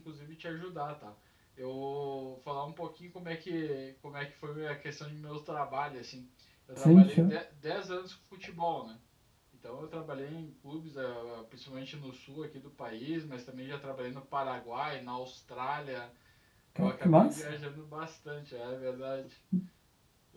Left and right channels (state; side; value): identical; both; correlation 1.00